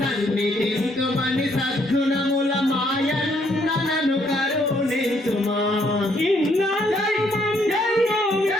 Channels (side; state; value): both; normal; correlation 0.69